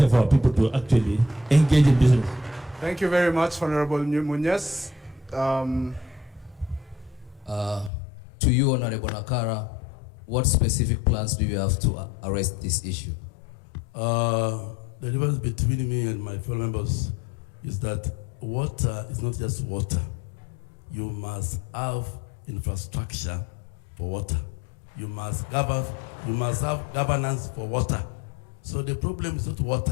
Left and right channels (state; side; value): drops out; right; at 7.9 s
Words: for our people to actually engage in business. Thank you very much, Honorable Munyes. To you, Honorable Nakara, what specific plans do you have to arrest this issue? The difference between me and my fellow members is that water is not just water. You must have infrastructure for water. You must have governance for water. So the problem is not